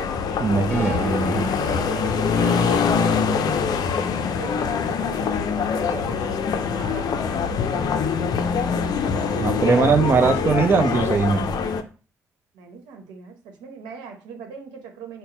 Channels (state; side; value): normal; both; correlation 0.57